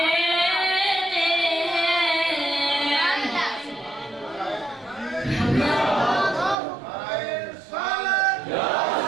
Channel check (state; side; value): drops out; left; at 6.6 s